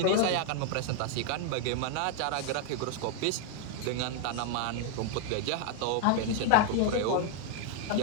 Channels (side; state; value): both; different; correlation 0.00